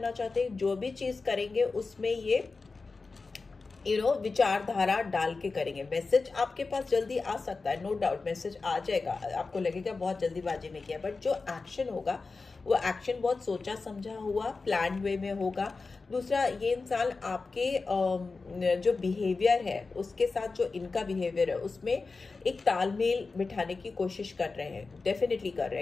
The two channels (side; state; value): right; quieter; 4.1 dB